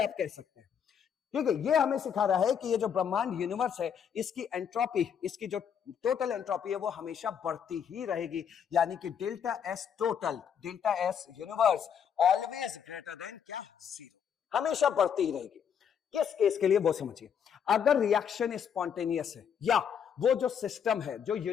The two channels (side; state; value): right; quieter; 7.9 dB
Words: आप कह सकते हैं। ठीक है, ये हमें सिखा रहा है कि ये जो ब्रह्मांड यूनिवर्स है इसकी एंट्रोपी, इसकी जो टोटल एंट्रोपी है वो हमेशा बढ़ती ही रहेगी, यानी कि delta S total, delta S universe always greater than क्या, 0, हमेशा बढ़ती ही रहेगी। किस केस के लिए वो समझिए, अगर रिएक्शन स्पॉन्टेनियस है या वो जो सिस्टम है, जो